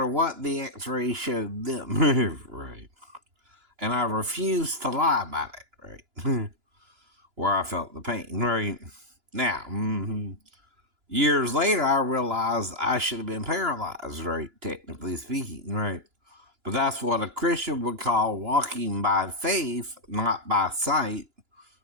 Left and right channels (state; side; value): late; left; 2.9 ms